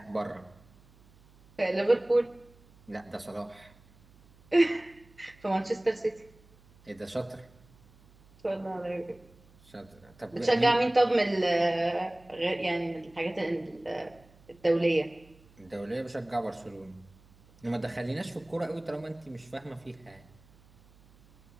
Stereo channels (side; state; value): right; noise; hum, 27 dB below the sound